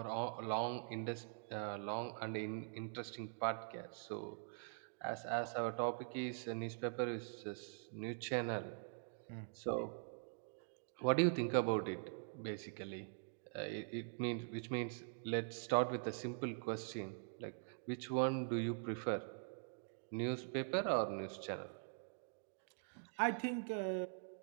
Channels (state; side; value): silent; left; digital silence